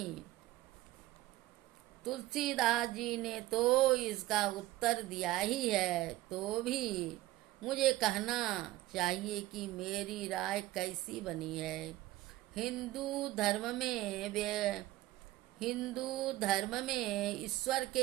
तुलसीदास जी ने तो इसका उत्तर दिया ही है, तो भी मुझे कहना चाहिए कि मेरी राय कैसी बनी है। हिंदू धर्म में ईश्वर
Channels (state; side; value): quieter; left; 16.9 dB